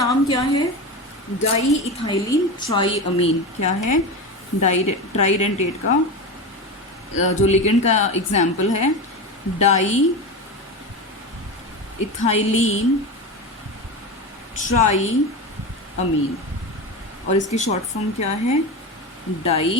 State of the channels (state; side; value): normal; both; correlation 0.22